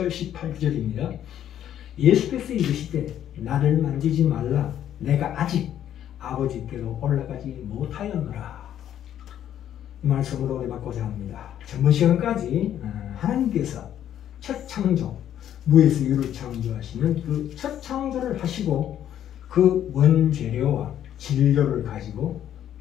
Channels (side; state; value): right; quieter; 10.7 dB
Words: 18절입니다. 예수께서 이르시되 나를 만지지 말라 내가 아직 아버지께로 올라가지 못하였노라. 이 말씀으로 은혜받고자 합니다. 전번 시간까지 하나님께서 첫 창조, 무에서 유를 창조하시는 그 첫 창조를 하시고 그 원재료와 진료를 가지고